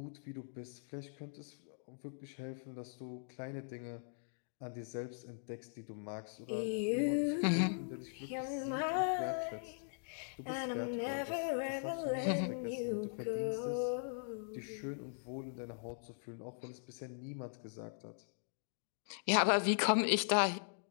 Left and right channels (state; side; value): silent; right; digital silence